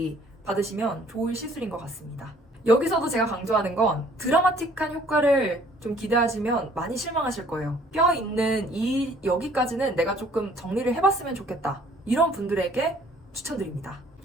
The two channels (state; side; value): normal; both; correlation 0.58